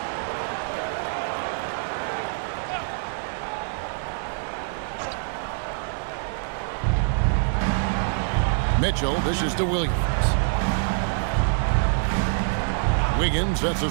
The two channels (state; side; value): silent; left; 62 dB below the other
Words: Mitchell dishes to Williams. Wiggins sets a